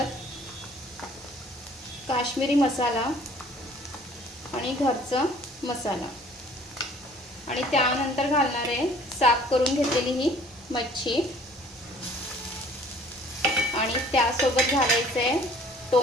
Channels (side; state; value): both; normal; correlation 0.53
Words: काश्मीरी मसाला आणि घरचा मसाला। आणि त्यानंतर घालणार आहे साफ करून घेतलेली ही मच्छी आणि त्यासोबत घालायचं आहे